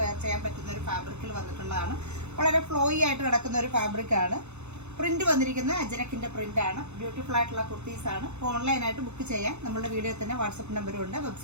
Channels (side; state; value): left; late; 0.81 ms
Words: വെയർ ചെയ്യാൻ പറ്റുന്ന ഒരു ഫാബ്രിക്കിൽ വന്നിട്ടുള്ളതാണ്. വളരെ ഫ്ലോയി ആയിട്ട് കിടക്കുന്ന ഒരു ഫാബ്രിക് ആണ്. പ്രിന്റ് വന്നിരിക്കുന്ന അജ്രക്കിന്റെ പ്രിന്റ് ആണ്. ബ്യൂട്ടിഫുൾ ആയിട്ടുള്ള കുർത്തീസ് ആണ്. ഓൺലൈനായിട്ട് ബുക്ക് ചെയ്യാൻ നമ്മുടെ വീഡിയോയിൽ തന്നെ വാട്സപ്പ് നമ്പറും ഉണ്ട്.